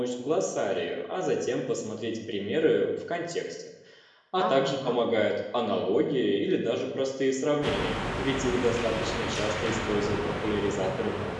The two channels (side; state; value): both; identical; correlation 1.00